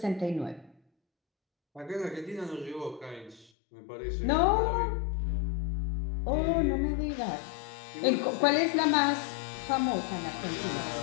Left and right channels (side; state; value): right; drops out; at 3.5 s